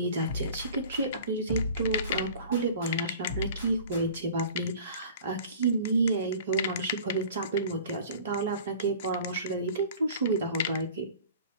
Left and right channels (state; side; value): inverted; both; correlation -0.43